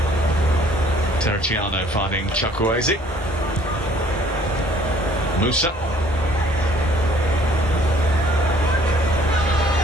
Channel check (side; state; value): both; normal; correlation 0.58